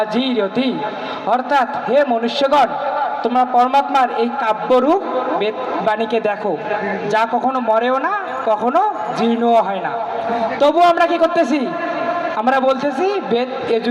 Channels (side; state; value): both; identical; correlation 1.00